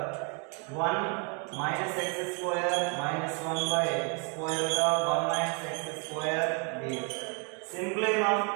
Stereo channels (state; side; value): quieter; left; 34.2 dB